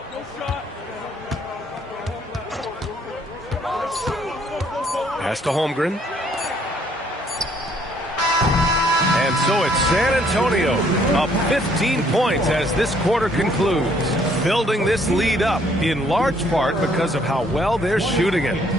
Pass to Holmgren. And so it's San Antonio up 15 points as this quarter concludes, building this lead up in large part because of how well they're shooting it.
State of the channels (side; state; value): both; normal; correlation 0.65